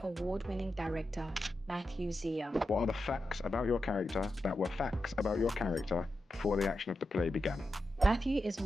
Award-winning director, Matthew Xia. What are the facts about your character that were facts about your character before the action of the play began? Matthew is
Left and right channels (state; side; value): normal; both; correlation 0.89